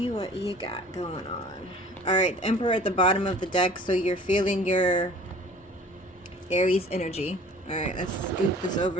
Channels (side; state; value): both; normal; correlation 0.48